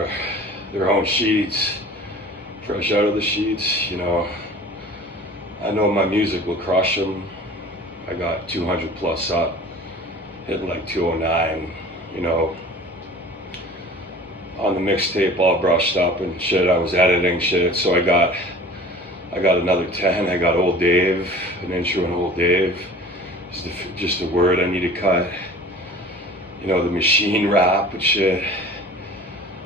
their own sheets, fresh out of the sheets. You know, I know my music will crush them. I got 200 plus up, hitting like 209, you know, on the mixtape all brushed up and shit. I was editing shit, so I got another 10. I got Old Dave, an intro on Old Dave. Just a word I need to cut. You know, the machine rap and shit.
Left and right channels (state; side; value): normal; both; correlation 0.43